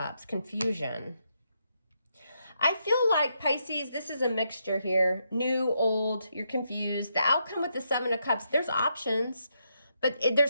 Confusion. I feel like, Pisces, this is a mixture here. New, old, you're confused. The outcome with the Seven of Cups, there's options, but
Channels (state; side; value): inverted; both; correlation -0.80